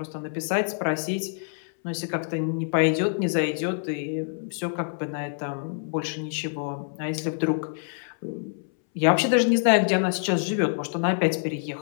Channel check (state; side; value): silent; right; 61 dB below the other